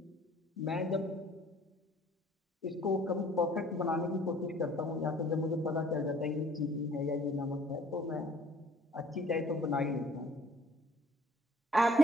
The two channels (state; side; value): normal; both; correlation 0.55